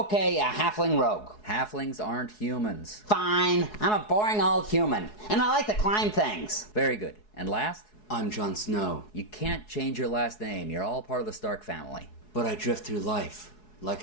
a halfling rogue. Halflings aren't humans. Fine, I'm a boring old human, and I like to climb things. Very good. And last? I'm Jon Snow, You can't change your last name. You're all part of the Stark family. but I drift through life like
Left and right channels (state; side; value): late; right; 4.7 ms